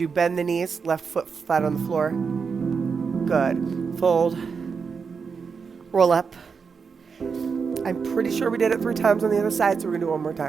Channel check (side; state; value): left; quieter; 5.6 dB